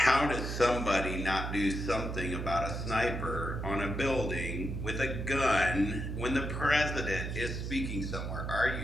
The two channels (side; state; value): right; noise; hum, 4 dB below the sound